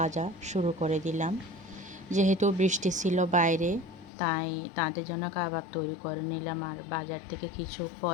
শুরু করে দিলাম। যেহেতু বৃষ্টি ছিল বাইরে, তাই তাদের জন্য কাবাব তৈরি করে নিলাম। আর বাজার থেকে কিছু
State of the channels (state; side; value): drops out; right; at 4.1 s